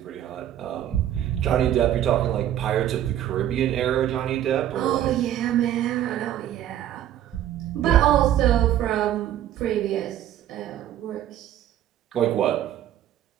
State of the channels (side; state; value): left; quieter; 11.6 dB